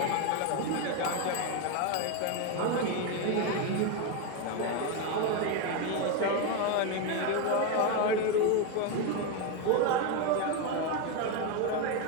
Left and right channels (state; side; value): different; both; correlation 0.02